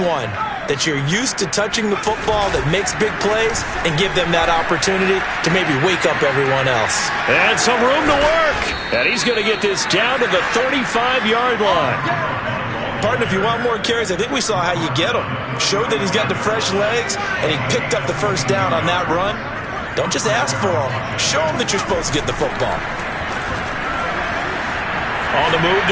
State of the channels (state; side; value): identical; both; correlation 1.00